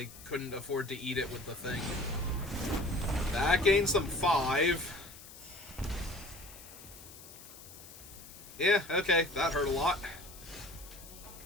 couldn't afford to eat it with the thing. That gains them 5. Yeah, okay, that hurt a lot.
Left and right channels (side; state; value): left; noise; hiss, 17 dB below the sound